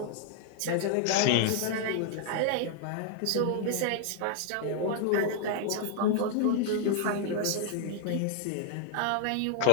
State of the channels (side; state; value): both; different; correlation -0.01